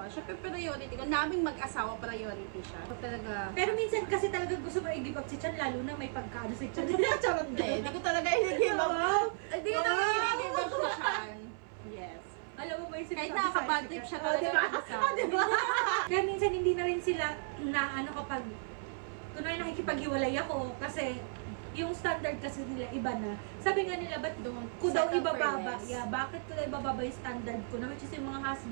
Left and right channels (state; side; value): silent; left; 55 dB below the other